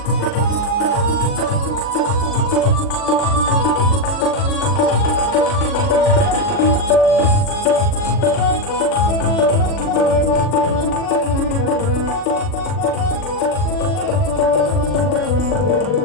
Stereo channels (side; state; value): right; late; 40 ms